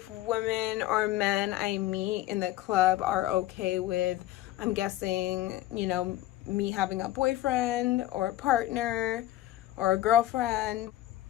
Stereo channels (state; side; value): quieter; right; 14.9 dB